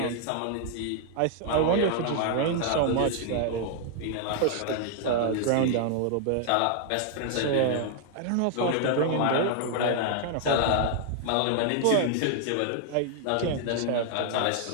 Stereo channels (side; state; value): both; different; correlation 0.00